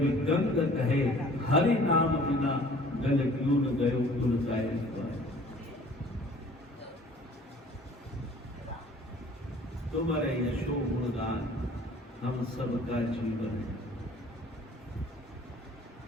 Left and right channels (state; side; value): normal; both; correlation 0.51